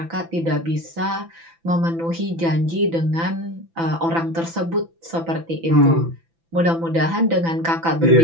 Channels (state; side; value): late; left; 6.0 ms